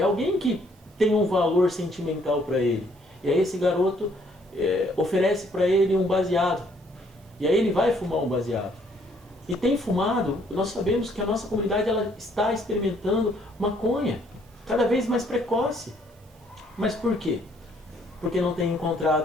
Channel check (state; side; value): normal; both; correlation 0.66